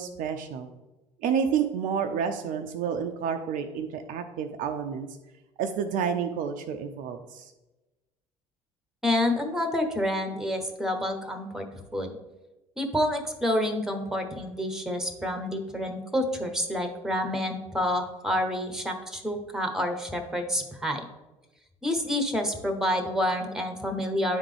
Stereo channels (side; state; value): both; normal; correlation 0.51